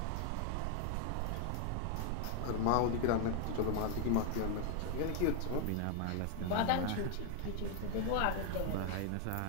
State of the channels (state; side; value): different; both; correlation 0.00